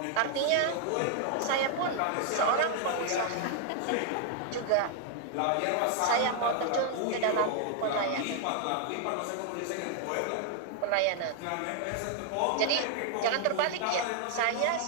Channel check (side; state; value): both; different; correlation 0.00